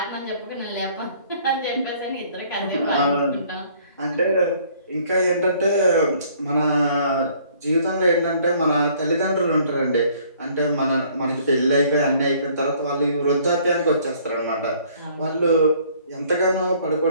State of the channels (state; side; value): inverted; both; correlation -0.59